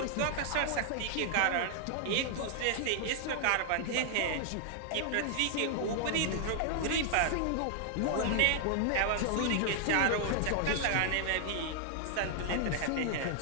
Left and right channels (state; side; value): different; both; correlation 0.00